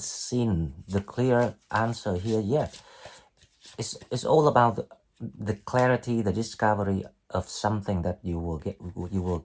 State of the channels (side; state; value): both; identical; correlation 1.00